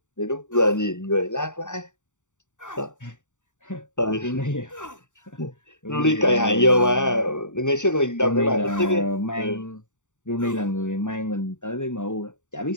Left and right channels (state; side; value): late; right; 0.85 ms